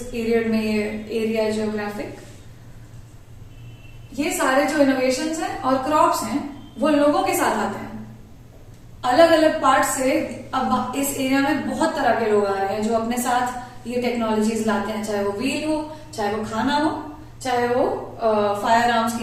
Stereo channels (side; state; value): both; identical; correlation 1.00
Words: पीरियड में ये एरिया है जियोग्राफिक, ये सारे जो इनोवेशंस हैं और क्रॉप्स हैं वो लोगों के साथ आते हैं अलग अलग पार्ट से। अब इस एरिया में बहुत तरह के लोग आ रहे हैं जो अपने साथ ये टेक्नोलॉजीज लाते हैं, चाहे वो व्हील हो, चाहे वो खाना हो, चाहे वो फायर आर्म्स